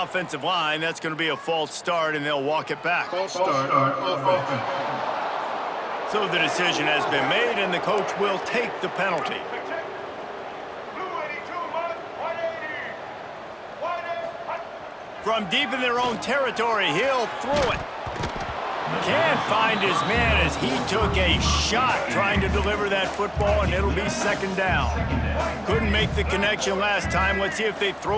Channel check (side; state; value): both; identical; correlation 1.00